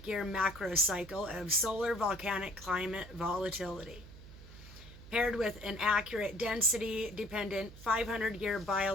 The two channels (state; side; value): noise; right; hum, 17 dB below the sound